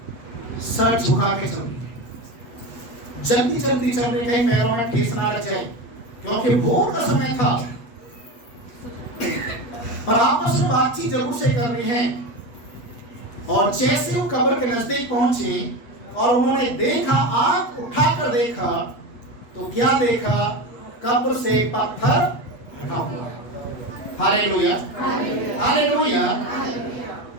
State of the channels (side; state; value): right; late; 8.2 ms